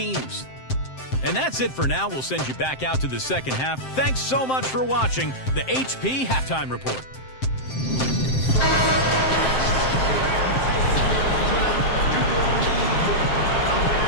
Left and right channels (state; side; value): late; right; 7.7 ms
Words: And that's it for now. We'll send you back out to the second half. Thanks so much for watching the HP Halftime Report.